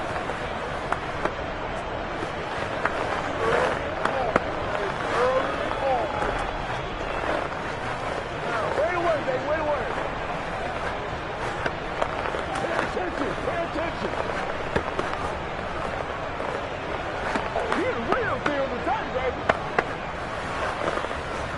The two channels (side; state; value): both; identical; correlation 1.00